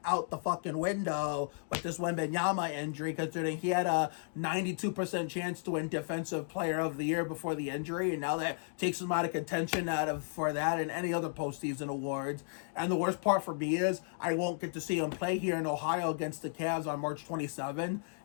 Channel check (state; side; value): silent; right; digital silence